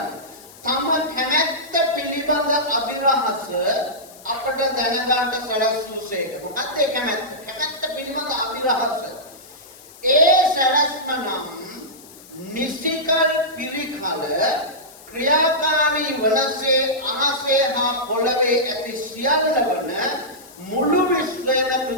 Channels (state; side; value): noise; left; hiss, 21 dB below the sound